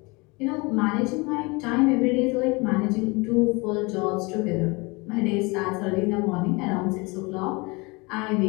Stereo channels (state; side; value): quieter; right; 26.8 dB